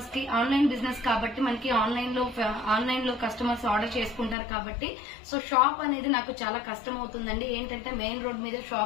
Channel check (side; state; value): right; drops out; at 4.4 s